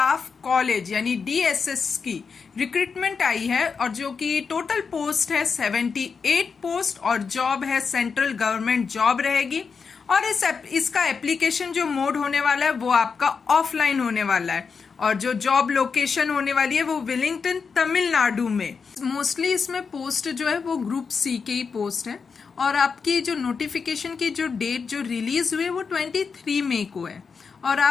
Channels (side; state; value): right; quieter; 5.5 dB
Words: कॉलेज यानी डीएसएस की रिक्रूटमेंट आई है और जो कि टोटल पोस्ट है 78 पोस्ट और जॉब है सेंट्रल गवर्नमेंट जॉब रहेगी। और इसका एप्लीकेशन जो मोड होने वाला है वो आपका ऑफलाइन होने वाला है और जो जॉब लोकेशन होने वाली है वो विलिंगटन तमिलनाडु में। मोस्टली इसमें पोस्ट जो है वो ग्रुप सी के ही पोस्ट है और आपकी जो नोटिफिकेशन की जो डेट जो रिलीज हुई है वो 23 मई को है और